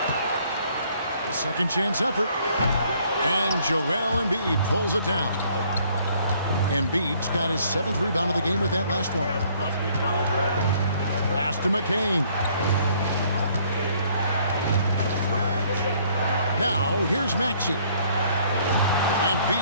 The second chance effort. And Joel Embiid pulls it down. Embiid's got his 7th rebound of the game with that last one. Pass to McCain. Now, here's Maxey.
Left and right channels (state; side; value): inverted; both; correlation -0.62